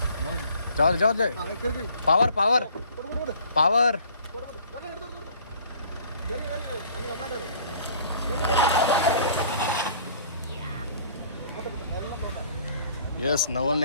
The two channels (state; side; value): inverted; both; correlation -0.53